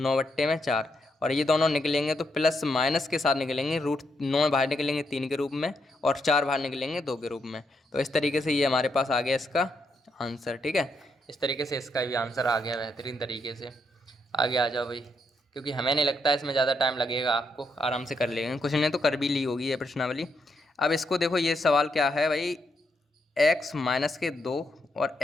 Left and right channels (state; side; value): normal; both; correlation 0.79